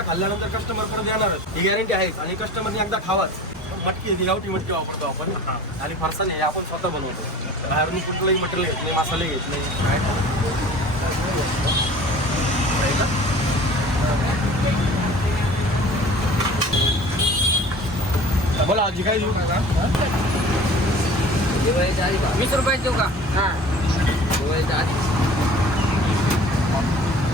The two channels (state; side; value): normal; both; correlation 0.44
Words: खाल्ल्यानंतर कस्टमर परत येणारच, ही गॅरंटी आहेच. आणि कस्टमरने एकदा खावाच. मटकी ही गावठी मटकी वापरतो आपण. आणि फरसाण हे आपण स्वतः बनवतो, बाहेरून कुठलंही मटेरियल घेत नाही, मसाले घेत नाही. बोला आजी काय देऊ? 20 रुपये देऊ का? हां,